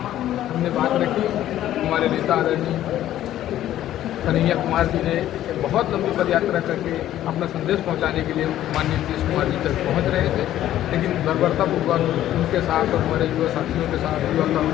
हमने बात रखी। हमारे नेता आदरणीय कन्हैया कुमार जी ने एक बहुत लंबी पद यात्रा करके अपना संदेश पहुंचाने के लिए माननीय नीतीश कुमार जी तक पहुंच रहे थे, लेकिन बर्बरतापूर्वक उनके साथ और हमारे युवा साथियों के साथ, युवा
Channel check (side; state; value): right; quieter; 12.7 dB